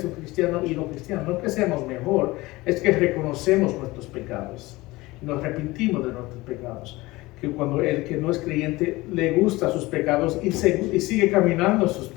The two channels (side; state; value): right; quieter; 20.6 dB